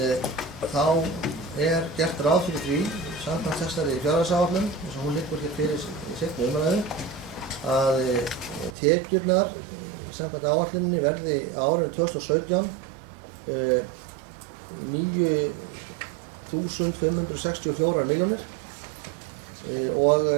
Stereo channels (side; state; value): left; drops out; at 8.8 s